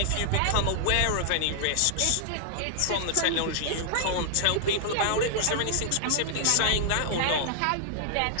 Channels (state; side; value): different; both; correlation -0.01